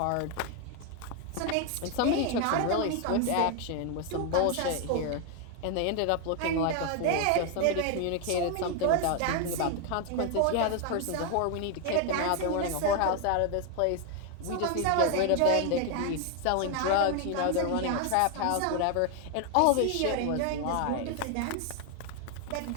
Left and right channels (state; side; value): different; both; correlation 0.01